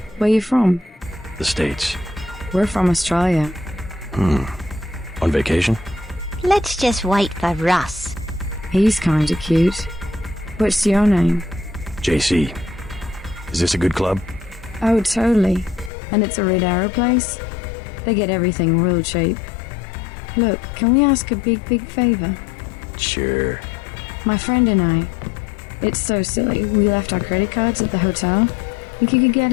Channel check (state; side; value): drops out; right; at 15.9 s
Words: where you from? The States. We're from Australia. On vacation? Let's just wait for Russ. He's kinda cute. What's your name? JC. Is this a good club? Oh, totally. And it's a Red Arrow place? They get everything real cheap. Look, can we ask a big favor? Sure. My friend and I. It's so silly. We left our credit cards at the hotel. Think you could get